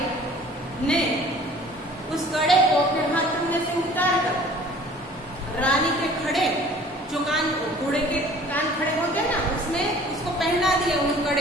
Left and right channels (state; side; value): normal; both; correlation 0.50